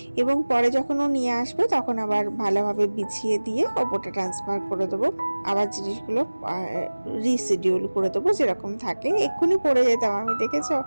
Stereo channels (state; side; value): inverted; both; correlation -1.00